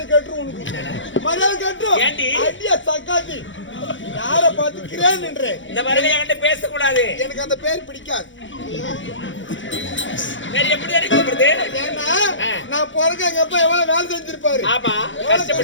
கட்டுரும் உனக்கு. மரியாதை கட்டுரும். அடியா சக்காத்தி யார பார்த்து கிரேன் என்ற இந்த மாதிரி என்கிட்ட பேசக்கூடாது. எனக்கு அந்த பேர் பிடிக்காது. எப்படி அடிக்கப்படுது? ஏன்னா நான் பிறகு எங்க அப்பா எவ்வளவு வேலை செஞ்சிருப்பாரு. ஆமா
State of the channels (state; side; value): late; right; 0.55 ms